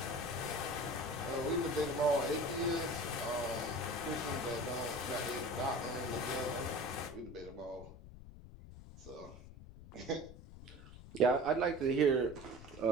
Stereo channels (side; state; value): left; noise; rumble, 16 dB below the sound